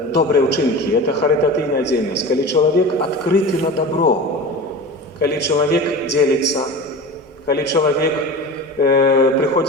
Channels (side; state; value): both; normal; correlation 0.32